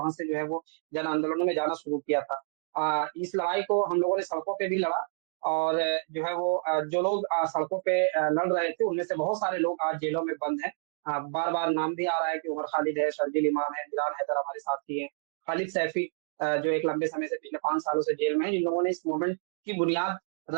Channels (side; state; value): left; silent; digital silence